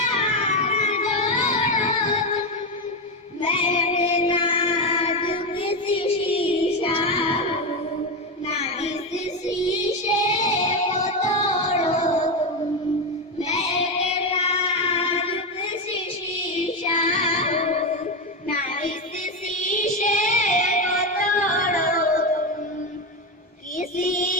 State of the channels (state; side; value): normal; both; correlation 0.12